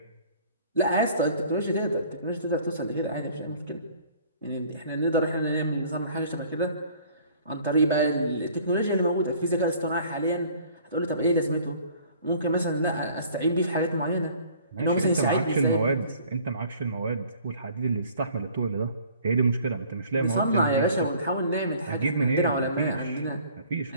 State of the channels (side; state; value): both; inverted; correlation -0.53